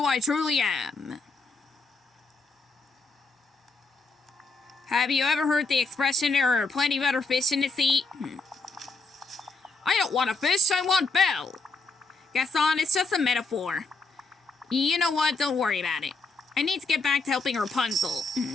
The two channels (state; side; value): quieter; right; 3.7 dB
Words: I truly am. Have you ever heard the expression, there are plenty better fish in the sea? I don't want a fish, I want Belle. Gaston, it's just a metaphor. You know what? Don't worry about it. I need to get back to helping Rapunzel.